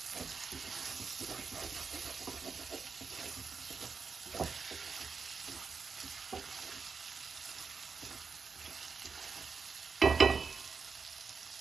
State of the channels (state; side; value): quieter; left; 5.1 dB